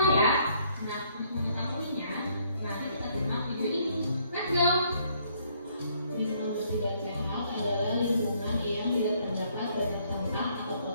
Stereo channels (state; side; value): inverted; both; correlation -0.67